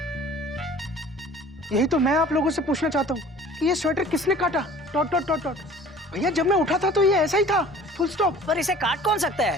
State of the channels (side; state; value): both; normal; correlation 0.47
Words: यही तो मैं आप लोगों से पूछना चाहता हूँ कि ये स्वेटर किसने काटा, डॉट डॉट डॉट डॉट। भैया, जब मैं उठा था तो ये ऐसा ही था, फुल स्टॉप। पर इसे काट कौन सकता